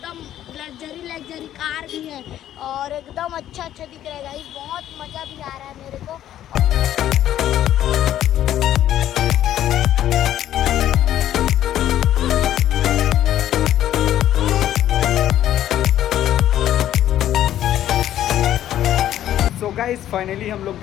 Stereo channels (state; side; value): quieter; right; 12.0 dB